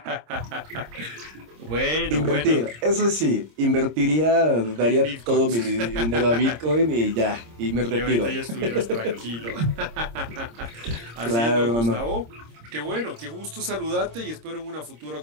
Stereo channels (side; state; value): left; late; 26 ms